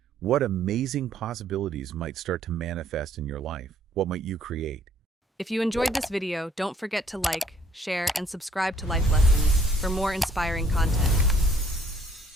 what amazing possibilities might start to manifest in your life? What might you create? If you enjoyed this video, don't forget to like, share, and subscribe to Life Lessons for more inspiring content.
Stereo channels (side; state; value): both; normal; correlation 0.62